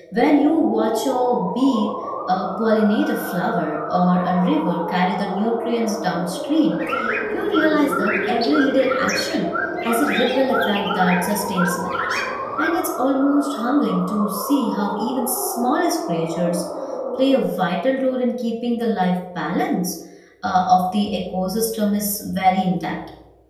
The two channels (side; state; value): both; identical; correlation 1.00